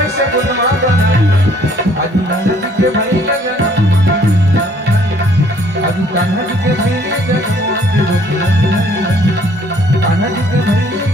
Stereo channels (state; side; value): normal; both; correlation 0.61